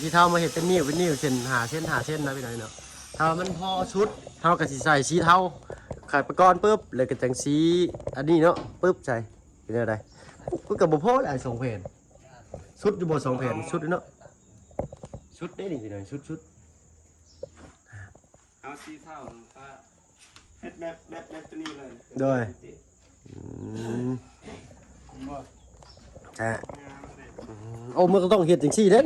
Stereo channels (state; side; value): identical; both; correlation 1.00